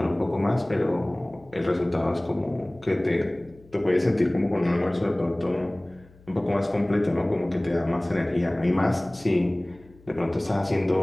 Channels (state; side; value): noise; left; hum, 26 dB below the sound